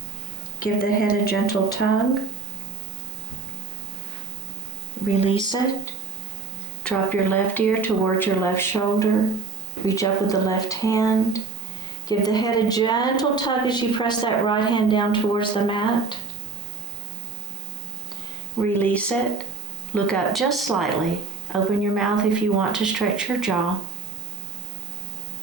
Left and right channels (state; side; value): quieter; left; 4.3 dB